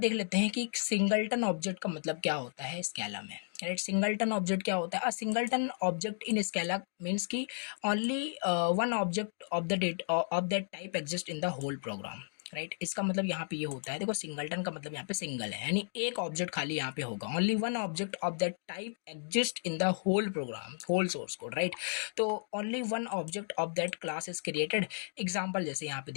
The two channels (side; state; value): right; silent; digital silence